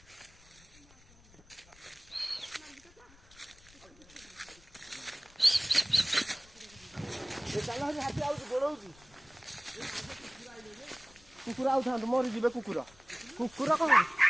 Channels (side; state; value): left; noise; rumble, 25 dB below the sound